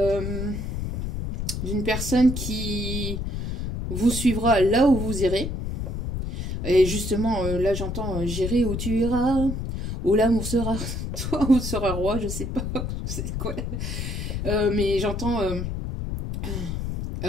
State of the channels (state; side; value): noise; left; rumble, 4 dB below the sound